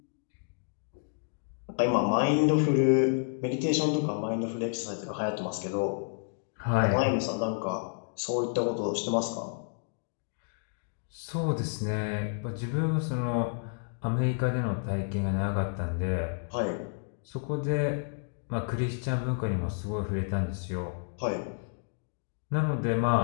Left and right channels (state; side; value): silent; right; digital silence